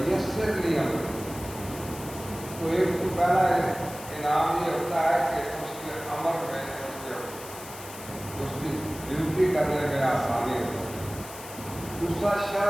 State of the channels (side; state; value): left; noise; hiss, 14 dB below the sound